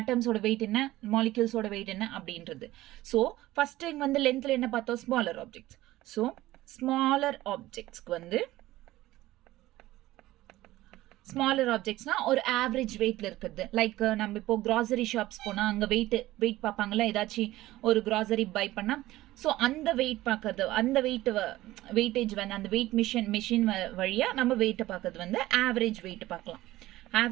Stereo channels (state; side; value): quieter; left; 16.6 dB